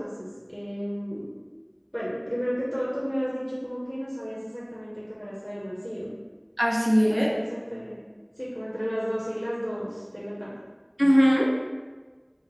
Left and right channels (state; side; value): identical; both; correlation 1.00